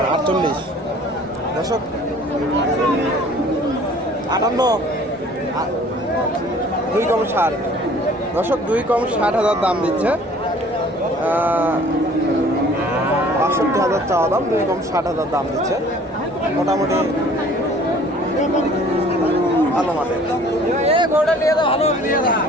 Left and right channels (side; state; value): both; normal; correlation 0.52